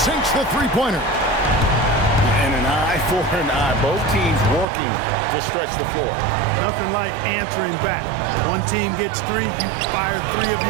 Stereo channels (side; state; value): left; drops out; at 4.7 s